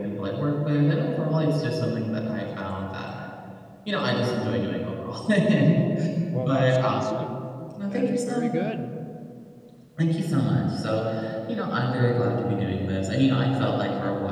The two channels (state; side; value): identical; both; correlation 1.00